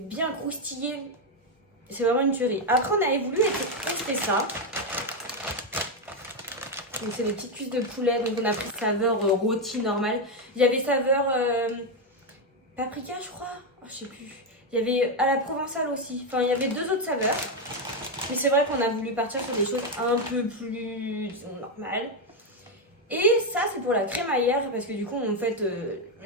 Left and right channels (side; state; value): both; normal; correlation 0.05